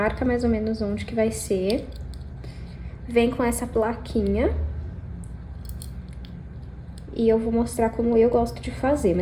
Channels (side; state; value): both; identical; correlation 1.00